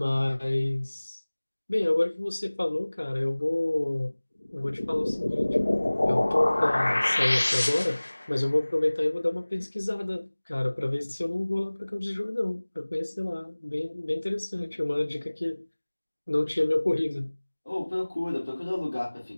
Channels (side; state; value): both; inverted; correlation -1.00